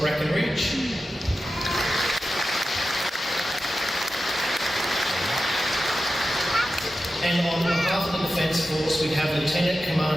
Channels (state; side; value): normal; both; correlation 0.92